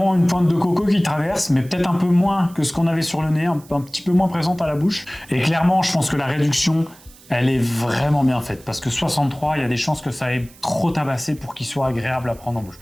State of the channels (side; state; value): right; noise; hiss, 24 dB below the sound